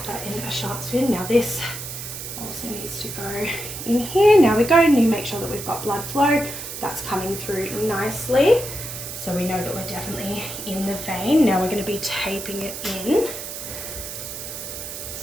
that in a sharp spin. Now this also needs to go in here. Now we go and you make sure that we've got blood flow. That's coming through nicely. So we know that we're definitely in the vein. Now we're going to be taping it in.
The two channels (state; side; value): noise; right; hiss, 8 dB below the sound